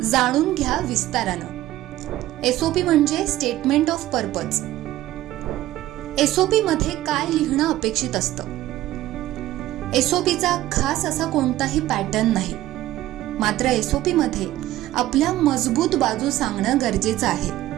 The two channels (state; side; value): quieter; left; 15.1 dB